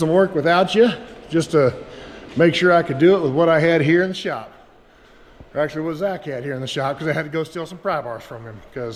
work without you just to make sure I could do it with what I had here in the shop. Or actually what Zach had here in the shop, because I had to go steal some pry bars from him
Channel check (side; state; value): both; identical; correlation 1.00